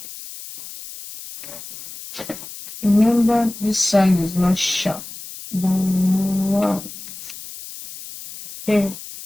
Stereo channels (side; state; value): left; noise; hiss, 13 dB below the sound